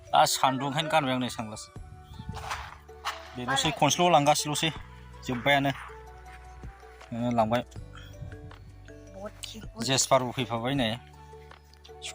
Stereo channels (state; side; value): identical; both; correlation 1.00